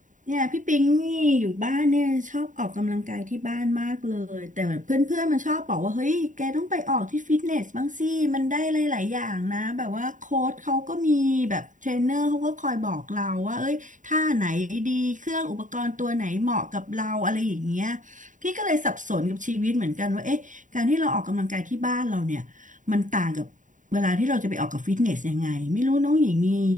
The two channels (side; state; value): left; late; 0.37 ms